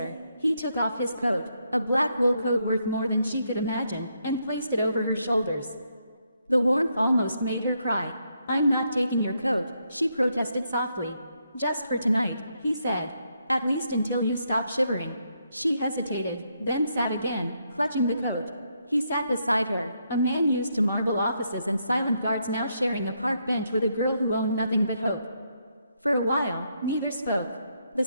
He took off his coat, a black wool coat worth more than she could imagine, and placed it over her shoulders. The warmth almost made her cry. "I'm not taking your coat," she protested softly. "Just for tonight," he said. "At least until you stop shivering." She hesitated, then sat again, clutching the coat. He sat beside her, a man used to marble offices and silent guards now sharing a park bench with a girl who owned nothing but hope. For a while, neither spoke. The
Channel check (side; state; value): both; inverted; correlation -0.78